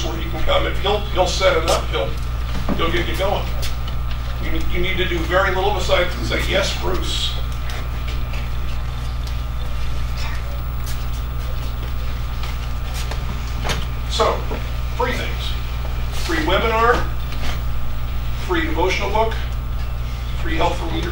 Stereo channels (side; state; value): both; identical; correlation 1.00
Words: where you can come, and he'll set it up. He'll get you going. You need to do very little besides say, yes, Bruce. So, free things. Free webinar, free devotional book, free help for